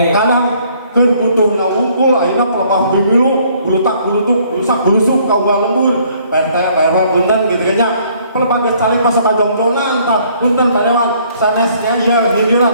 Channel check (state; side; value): inverted; both; correlation -0.63